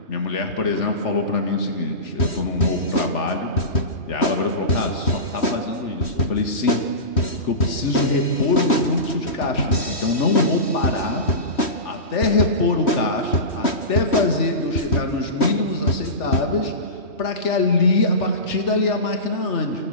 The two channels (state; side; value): late; right; 3.1 ms